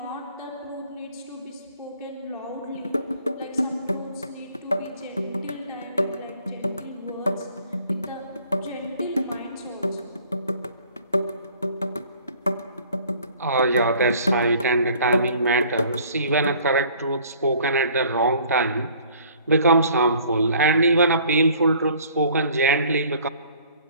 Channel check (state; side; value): inverted; both; correlation -0.55